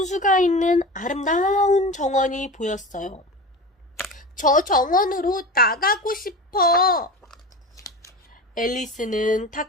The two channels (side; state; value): both; normal; correlation 0.30